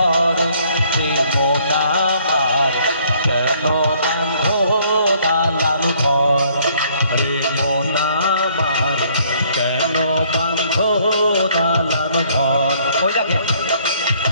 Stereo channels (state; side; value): inverted; both; correlation -0.63